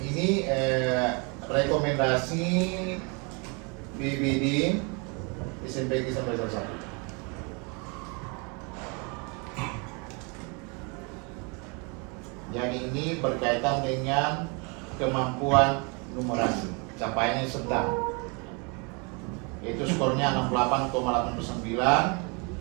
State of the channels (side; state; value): left; quieter; 32.4 dB